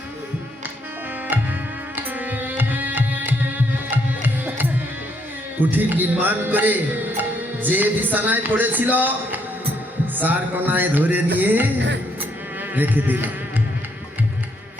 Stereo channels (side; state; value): both; normal; correlation 0.72